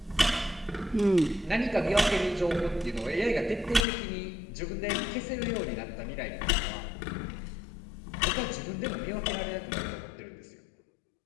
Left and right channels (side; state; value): right; drops out; at 3.9 s